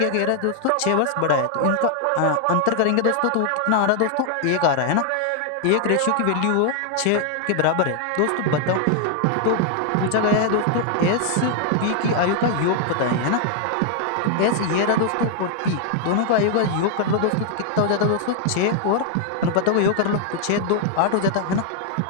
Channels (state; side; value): different; both; correlation 0.00